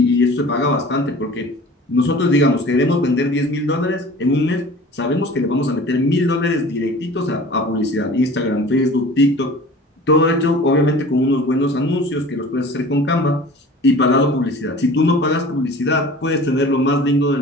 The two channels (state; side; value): normal; both; correlation 0.42